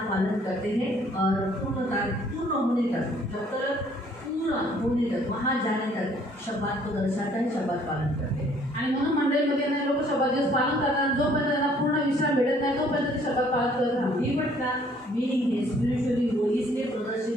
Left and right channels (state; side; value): normal; both; correlation 0.61